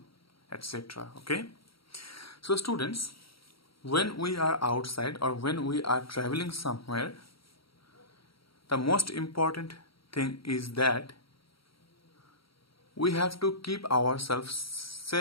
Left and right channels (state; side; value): late; right; 0.75 ms